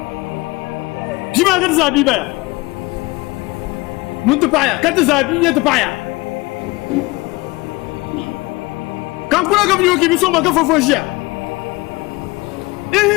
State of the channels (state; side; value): quieter; right; 22.6 dB